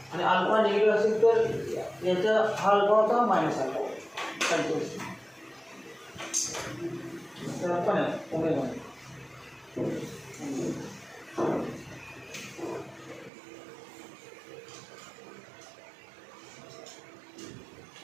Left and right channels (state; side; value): drops out; left; at 13.3 s